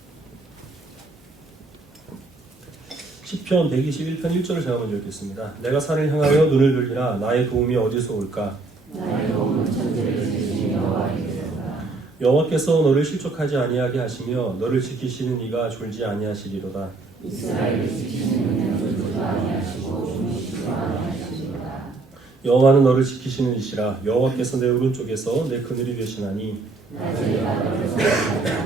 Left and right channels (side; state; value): left; quieter; 3.6 dB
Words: 시편 121편 1절을 제가 먼저 읽겠습니다. 내가 산을 향하여 눈을 들리라 나의 도움이 어디서 올까? 여호와께서 너를 실족하지 아니하게 하시며 너를 지키시는 이가 졸지 아니하시리로다. 여호와는 너를 지키시는 이시라. 여호와께서 내 오른쪽에서 내 그늘이 되시나니